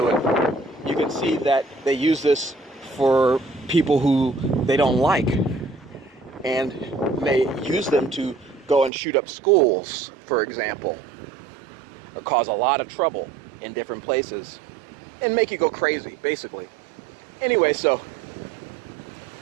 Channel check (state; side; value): drops out; left; at 8.9 s